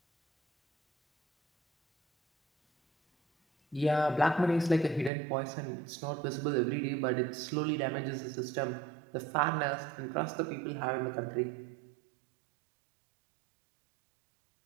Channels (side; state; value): left; drops out; at 5.1 s